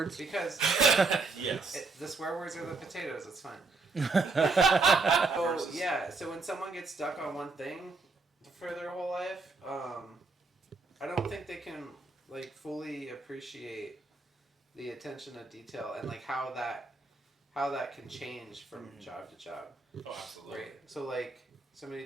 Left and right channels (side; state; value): left; quieter; 3.9 dB